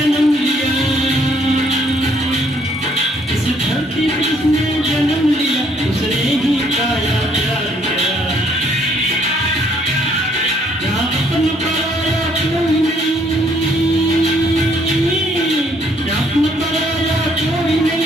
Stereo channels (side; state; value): both; normal; correlation 0.65